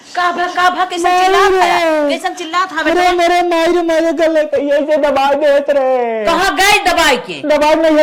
कैसन चिल्लात हवे? अरे मेरे माई रे, मेरे गले पे ऐसे दबा देत रे। कहाँ गए दबाई के? दबाई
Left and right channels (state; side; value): identical; both; correlation 1.00